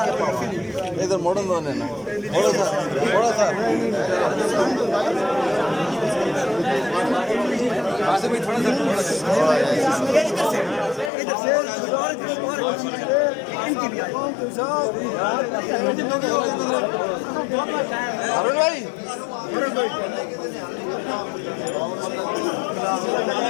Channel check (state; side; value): drops out; right; at 11.1 s